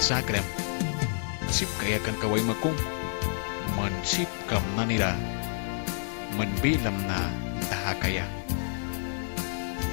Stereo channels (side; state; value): right; silent; digital silence